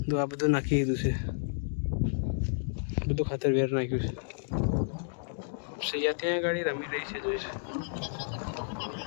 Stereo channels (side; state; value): right; silent; digital silence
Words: તો આ બધું નાખી દીધું છે, બધું ખાતર વેર નાખ્યું છે. સૈયા ત્યાં ગાડી રમી રહી છે, જોઈ છે.